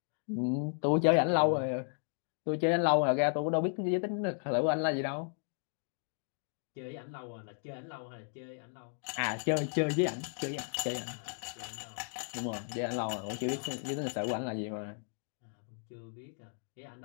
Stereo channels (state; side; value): silent; right; 55 dB below the other